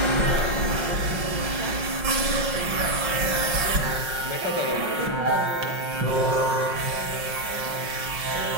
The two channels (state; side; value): late; left; 5.5 ms